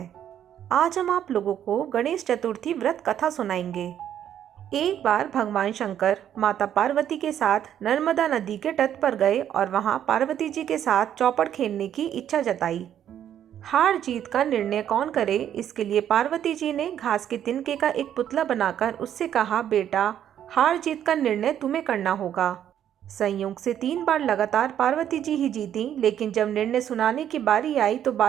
आज हम आप लोगों को गणेश चतुर्थी व्रत कथा सुनाएंगे। एक बार भगवान शंकर माता पार्वती के साथ नर्मदा नदी के तट पर गए और वहां पार्वती जी के साथ चौपड़ खेलने की इच्छा जताई। हार जीत का निर्णय कौन करे, इसके लिए पार्वती जी ने घास के तिनके का एक पुतला बनाकर उससे कहा, बेटा, हार जीत का निर्णय तुम्हें करना होगा। संयोग से 3 बार लगातार पार्वती जी ही जीती, लेकिन जब निर्णय सुनाने की बारी आई तो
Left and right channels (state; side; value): quieter; left; 10.2 dB